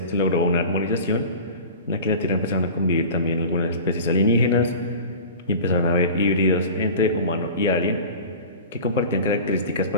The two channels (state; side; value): inverted; both; correlation -0.36